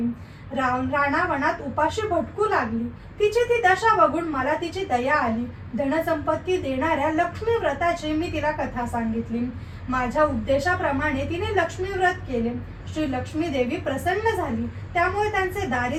रानावनात उपाशी भटकू लागली. तिची ती दशा बघून मला तिची दया आली. धनसंपत्ती देणाऱ्या लक्ष्मी व्रताची मी तिला कथा सांगितली. माझ्या उद्देशाप्रमाणे तिने लक्ष्मी व्रत केले. श्री लक्ष्मी देवी प्रसन्न झाली. त्यामुळे त्यांचे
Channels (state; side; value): identical; both; correlation 1.00